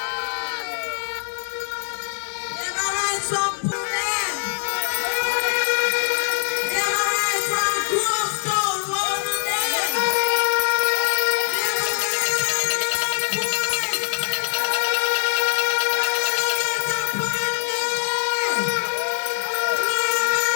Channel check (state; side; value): silent; right; digital silence